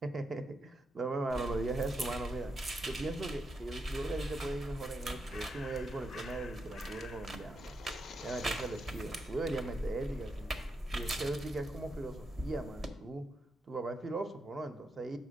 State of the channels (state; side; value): normal; both; correlation 0.83